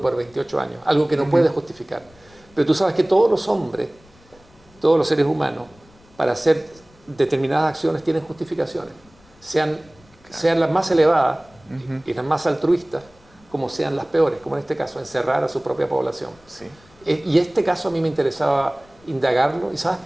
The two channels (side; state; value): left; noise; rumble, 28 dB below the sound